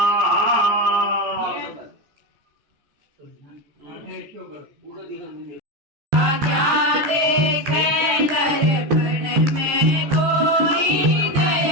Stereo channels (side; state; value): left; late; 14 ms